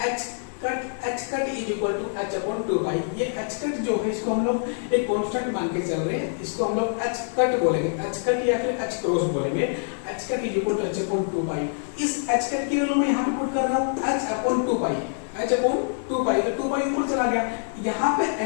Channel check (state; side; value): silent; right; 61 dB below the other